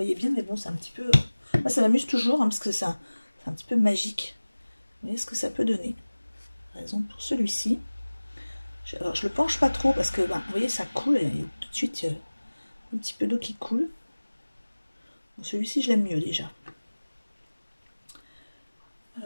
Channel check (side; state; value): both; inverted; correlation -1.00